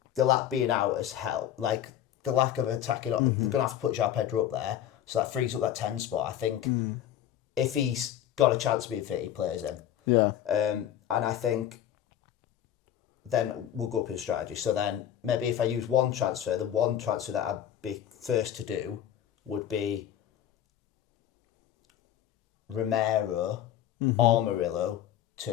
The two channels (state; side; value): quieter; right; 11.0 dB